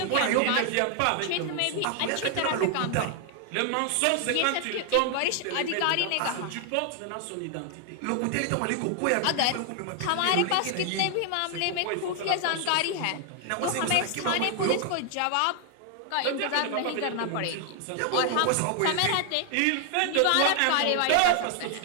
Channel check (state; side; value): different; both; correlation 0.00